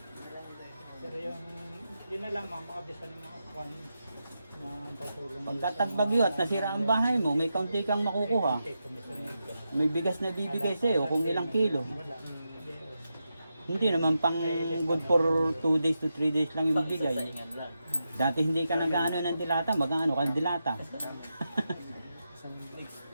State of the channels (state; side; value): inverted; both; correlation -0.88